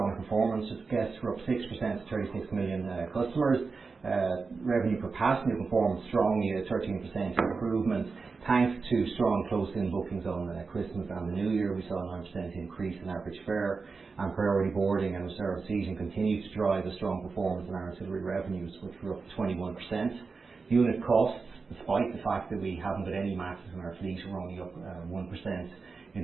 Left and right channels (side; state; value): left; quieter; 4.5 dB